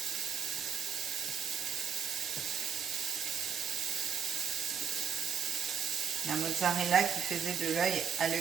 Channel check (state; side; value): quieter; left; 7.2 dB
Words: La mozzarella qui faisait de l'œil à